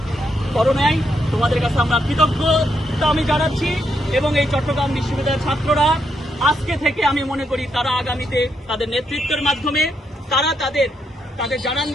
করো নাই। তোমাদের কাছে আমরা কৃতজ্ঞতা আমি জানাচ্ছি। এবং এই চট্টগ্রাম বিশ্ববিদ্যালয়ের ছাত্ররা আজকে থেকে আমি মনে করি তারা আগামীতে তাদের নেতৃত্বের মাধ্যমে তারা তাদের জানান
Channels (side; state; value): both; normal; correlation 0.79